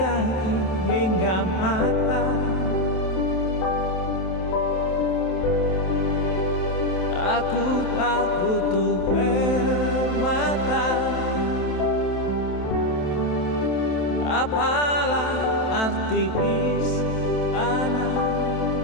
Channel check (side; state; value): right; late; 27 ms